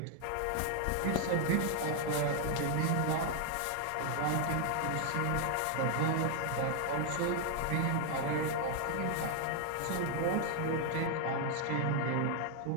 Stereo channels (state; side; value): different; both; correlation 0.00